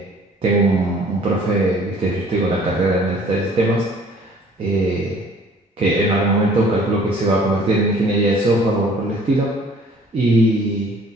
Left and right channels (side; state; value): both; normal; correlation 0.54